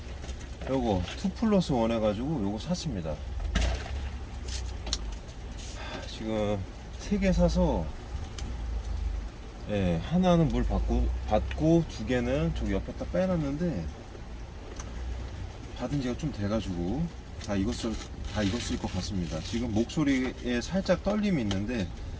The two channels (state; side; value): identical; both; correlation 1.00